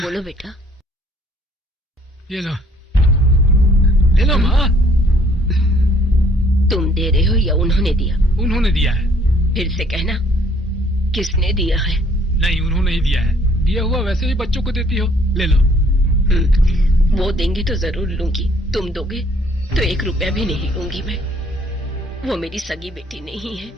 बेटा। ये लो, ले लो माँ। तुम दे रहे हो या उन्होंने दिया? उन्होंने दिया है। फिर से कहना, किसने दिया है? नहीं, उन्होंने ही दिया है। दिया हुआ वैसे भी बच्चों को देती हो, ले लो। वो देंगे तो जरूर लूंगी, तुम दोगे तो 1 रुपया भी नहीं लूंगी मैं। वो मेरी सगी बेटी नहीं है,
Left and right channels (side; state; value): both; normal; correlation 0.60